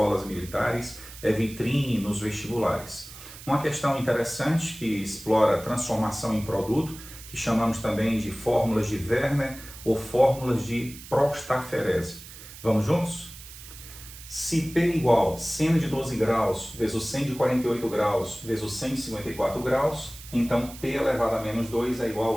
militares, é vitrine nos vestibulares. Uma questão interessante que explora transformação em produto, que chamamos também de fórmulas de Werner ou fórmulas de Prostaferese. Vamos juntos? Se P igual seno de 12 graus vezes seno de 48 graus vezes seno de 54 graus, então P elevado a menos 2 é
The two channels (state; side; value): noise; right; hiss, 16 dB below the sound